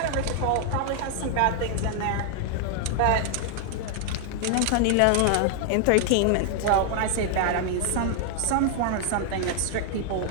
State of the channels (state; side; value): different; both; correlation 0.00